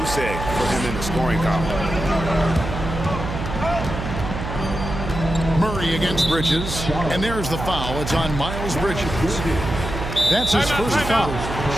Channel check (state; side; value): noise; right; hum, 6 dB below the sound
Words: egg for him in the scoring column. Murray against Bridges. And there's the foul. It's on Miles Bridges. That's his first foul.